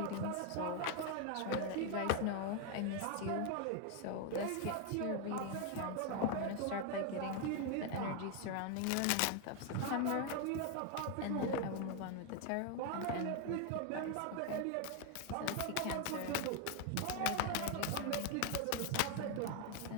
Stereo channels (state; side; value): different; both; correlation 0.01